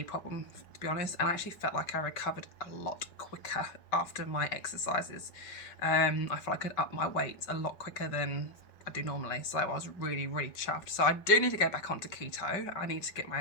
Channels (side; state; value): right; late; 5.4 ms